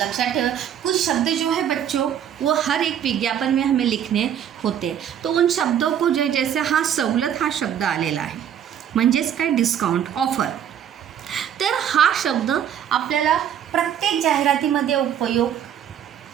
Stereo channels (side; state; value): left; quieter; 9.5 dB